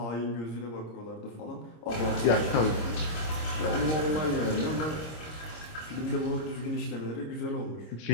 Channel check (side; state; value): right; late; 26 ms